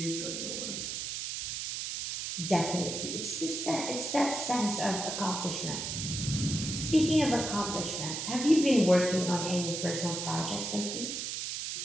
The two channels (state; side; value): noise; right; hiss, 4 dB below the sound